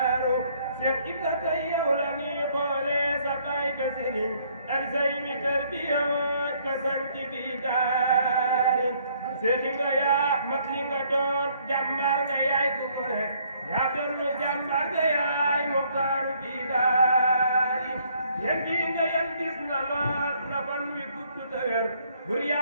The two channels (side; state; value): both; inverted; correlation -0.65